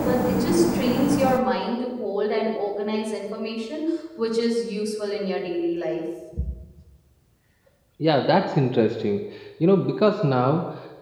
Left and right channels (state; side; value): identical; both; correlation 1.00